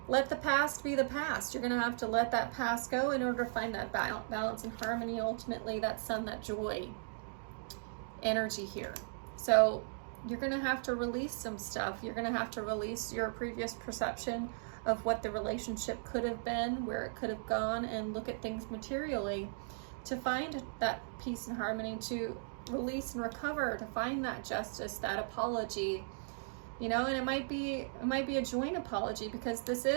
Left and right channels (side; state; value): left; silent; digital silence